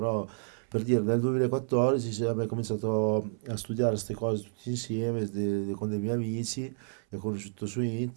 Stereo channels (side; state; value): left; silent; 58 dB below the other